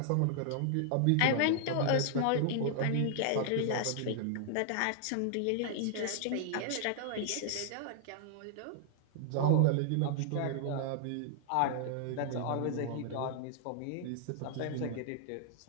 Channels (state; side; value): different; both; correlation -0.01